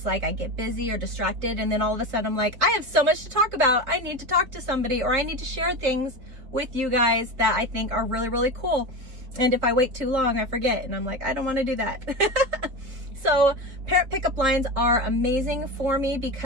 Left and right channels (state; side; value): late; left; 4.1 ms